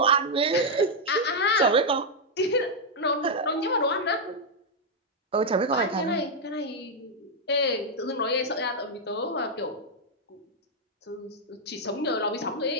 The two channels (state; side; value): normal; both; correlation -0.02